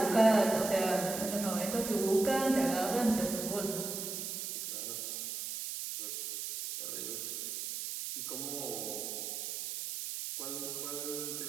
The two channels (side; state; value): right; noise; hiss, 5 dB below the sound